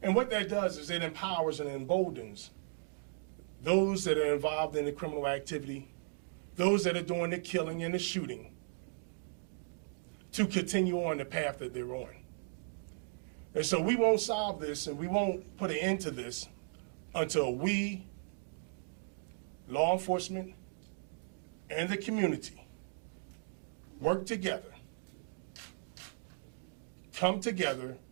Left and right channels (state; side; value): silent; left; digital silence